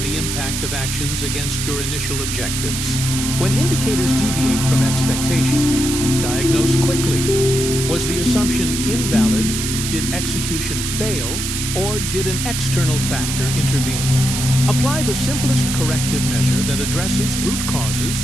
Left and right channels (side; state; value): right; noise; hiss, 3 dB below the sound